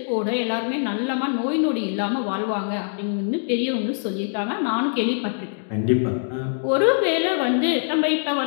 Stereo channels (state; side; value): silent; right; digital silence